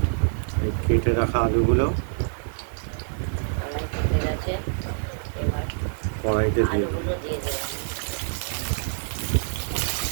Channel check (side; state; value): left; silent; digital silence